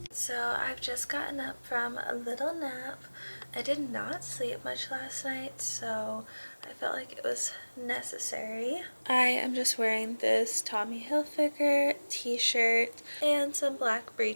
So I've just gotten up from a little nap. I did not sleep much last night, so I felt like it was necessary. I am just wearing this Tommy Hilfiger t-shirt and some black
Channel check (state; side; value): inverted; both; correlation -1.00